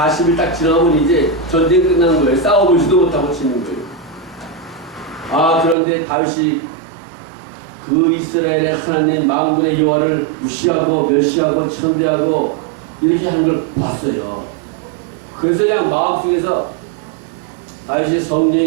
딱 지나면 이제 전쟁 끝나는 거예요. 싸워보지도 못하고 치는 거예요. 그런데 다윗이 그 이스라엘의 하나님 만군의 여호와를 무시하고 멸시하고 천대하고 이렇게 하는 걸 봤어요. 그래서 그냥 마음속에서 다윗이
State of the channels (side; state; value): left; drops out; at 5.8 s